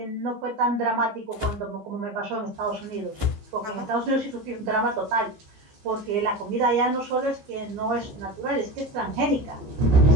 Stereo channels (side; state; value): left; late; 15 ms